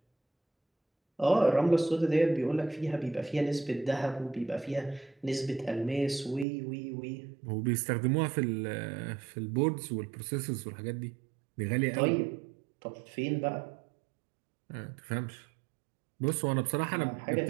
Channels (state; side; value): drops out; left; at 6.5 s